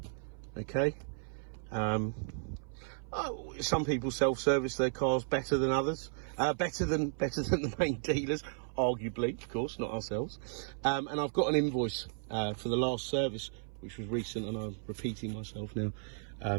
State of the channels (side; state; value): left; silent; 55 dB below the other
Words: Okay. Some people self-service their cars better than others, better than the main dealers, arguably, of course, not ourselves. And I've got an invoice for the last service, which was recent, and I'm repeating myself now,